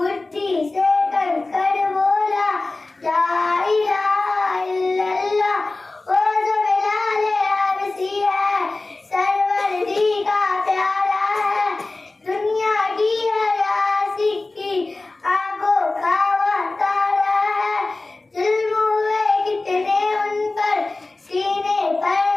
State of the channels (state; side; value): quieter; right; 3.2 dB